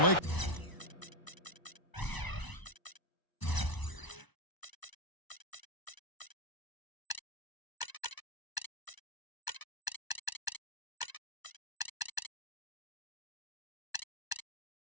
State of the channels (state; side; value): late; right; 1.0 ms